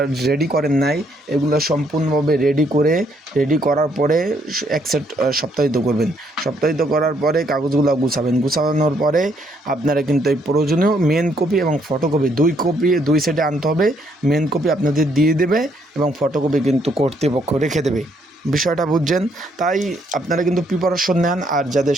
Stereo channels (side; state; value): both; normal; correlation 0.71